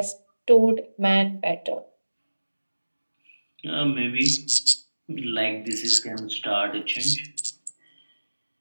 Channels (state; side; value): inverted; both; correlation -1.00